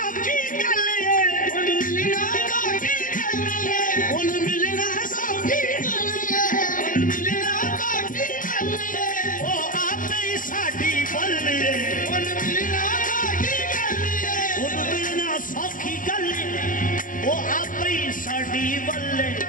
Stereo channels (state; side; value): late; right; 0.39 ms